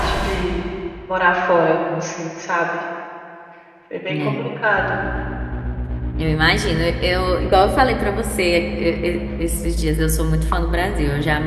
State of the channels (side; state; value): both; identical; correlation 1.00